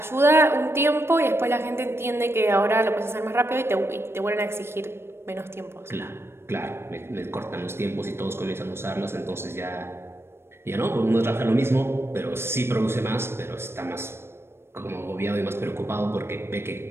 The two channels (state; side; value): late; left; 0.12 ms